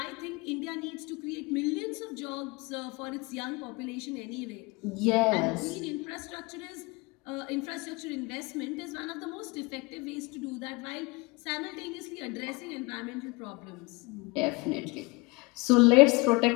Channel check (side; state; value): right; quieter; 25.4 dB